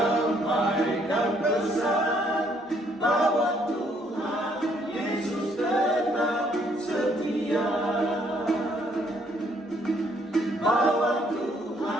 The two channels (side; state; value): both; normal; correlation 0.67